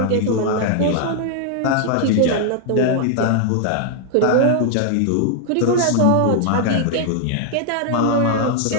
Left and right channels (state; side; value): different; both; correlation 0.00